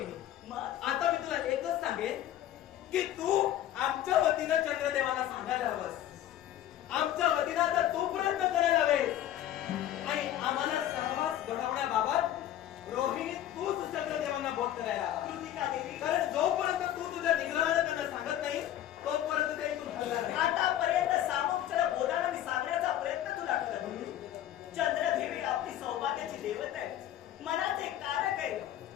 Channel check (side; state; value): right; quieter; 12.1 dB